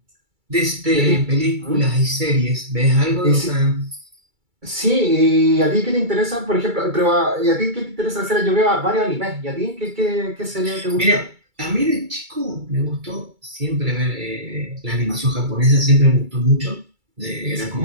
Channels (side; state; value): left; late; 2.3 ms